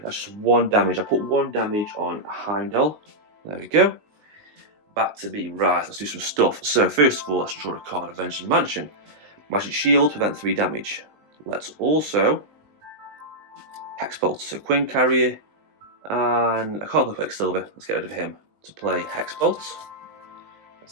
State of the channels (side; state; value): left; late; 19 ms